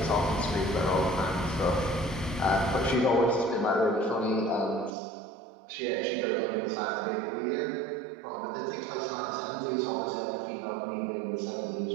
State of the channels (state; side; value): drops out; left; at 5.0 s